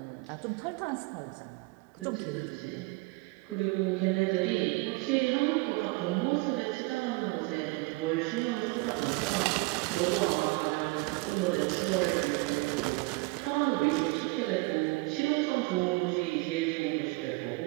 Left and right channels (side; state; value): left; quieter; 24.7 dB